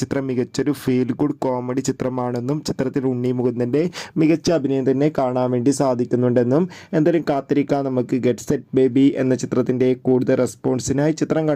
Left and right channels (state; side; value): identical; both; correlation 1.00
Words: ചിത്രം മികച്ചൊരു ഫീൽ ഗുഡ് കോമഡി ചിത്രമാണെന്നും ചിത്രത്തിൽ ഉണ്ണി മുകുന്ദൻ്റെ മികച്ച അഭിനയം തന്നെ കാണാൻ വേണ്ടി സാധിക്കുന്നുണ്ടെന്നും. എന്തായാലും കാത്തിരിക്കാം നമുക്ക് ഗെറ്റ് സെറ്റ് ബേബി എന്ന ചിത്രത്തിൻ്റെ കൂടുതൽ റെസ്പോൺസിനായി. ചിത്രം